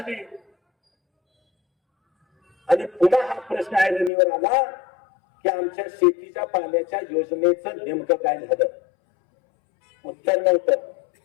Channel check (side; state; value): right; drops out; at 4.1 s